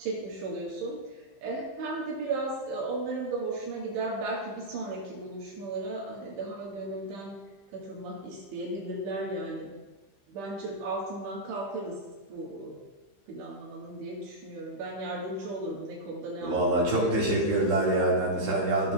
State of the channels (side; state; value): left; late; 15 ms